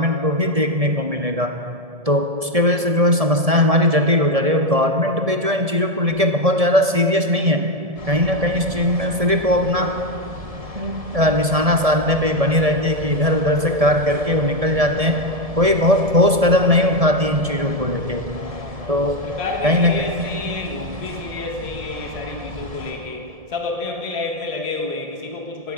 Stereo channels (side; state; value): left; late; 1.7 ms